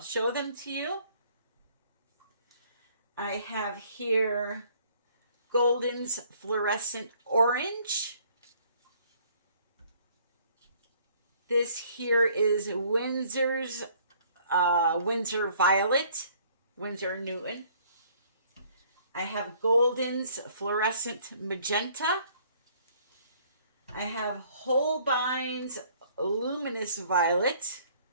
show them to you. I have here Golden's Fluorescent Orange. This here is Windsor's Windsor Violet, Winsor & Newton. I have Golden's Fluorescent Magenta. I have Holbein's Luminous Violet.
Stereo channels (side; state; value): both; inverted; correlation -0.60